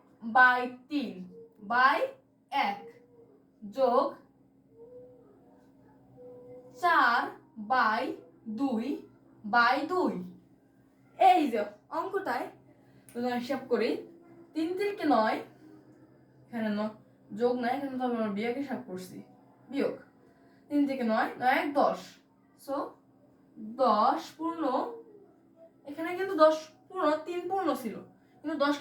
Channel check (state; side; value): identical; both; correlation 1.00